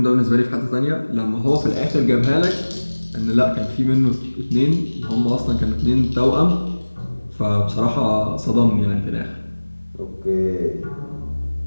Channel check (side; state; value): both; inverted; correlation -1.00